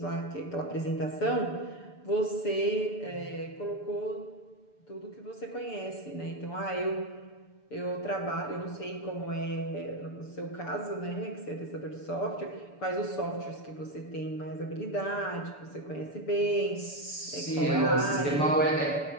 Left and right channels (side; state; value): right; late; 6.9 ms